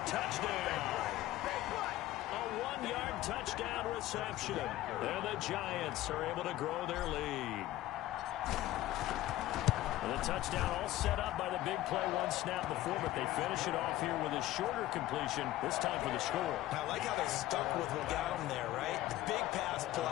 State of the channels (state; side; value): quieter; right; 15.4 dB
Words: touchdown. A 1-yard touchdown reception. And the Giants are able to grow their lead. And the touchdown all set up by the big play, 1 snap before, but they finish it off here with a shorter completion, this time for the score. I like how they stuck with what got them there, right? The big pass